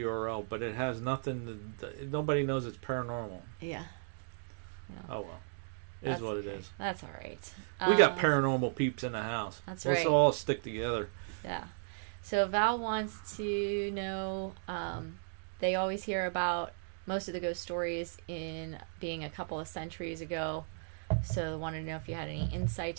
but it has nothing. Nobody knows it's paranormal. Yeah. Oh well. Is what it is. That's all right. We got paranormal peeps in the house. That's right. Let's all stick together. Yeah. So Val wants to know, they always hear about most of the ghost stories in being a couple of centuries ago. So wanted to know if you had any insight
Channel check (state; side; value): silent; left; digital silence